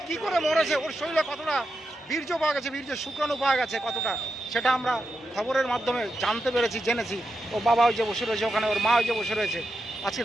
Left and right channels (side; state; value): both; normal; correlation 0.87